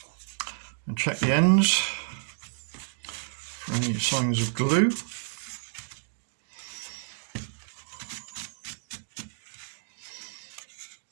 And check the ends for any signs of glue.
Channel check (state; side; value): silent; left; digital silence